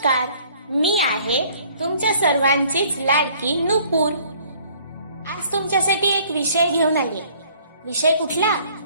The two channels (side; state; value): both; inverted; correlation -0.58